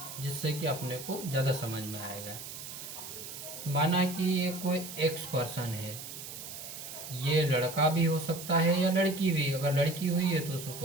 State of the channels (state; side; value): noise; right; hiss, 10 dB below the sound